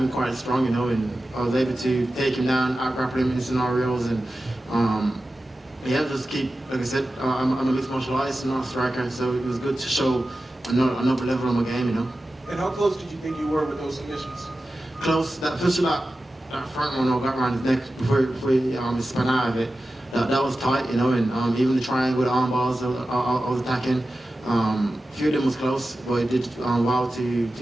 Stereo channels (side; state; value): both; normal; correlation 0.94